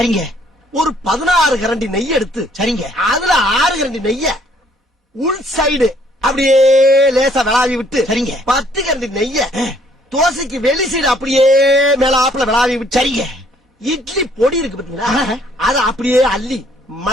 ஒரு 16 கரண்டி நெய் எடுத்து சரிங்க அதுல 6 கரண்டி நெய்ய உள் சைடு அப்படியே லேசா விளாவி விட்டு சரிங்க 10 கரண்டி நெய்ய தோசைக்கு வெளி சைடு அப்படியே மேலாப்ல விளாவி விட்டு சரிங்க இட்லி பொடி இருக்கு பாத்தீங்களா, அத அப்படியே அள்ளி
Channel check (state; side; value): normal; both; correlation 0.63